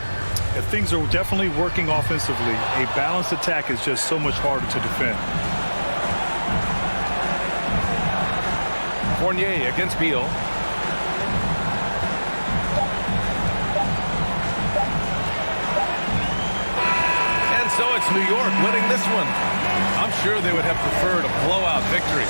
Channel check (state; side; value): inverted; both; correlation -1.00